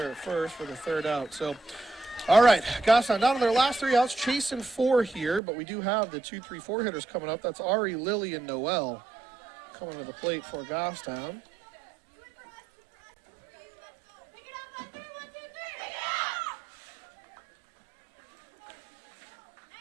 at first for the 3rd out. So, all right, Goffstown down to their last 3 outs, chasing 4 here, but we do have the 2-3-4 hitters coming up. That's Ari, Lily, and Noel coming to the plate for Goffstown.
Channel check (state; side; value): drops out; left; at 5.4 s